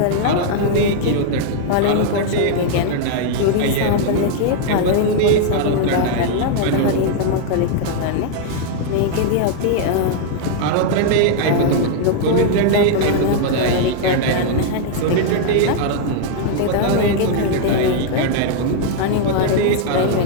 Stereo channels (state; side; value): different; both; correlation 0.00